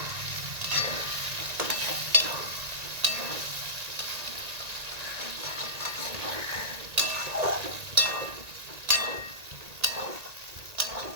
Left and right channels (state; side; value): late; left; 1.9 ms